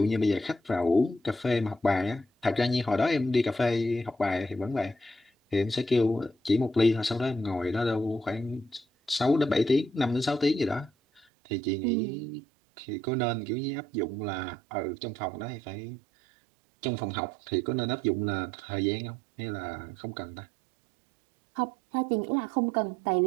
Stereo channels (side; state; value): left; drops out; at 11.2 s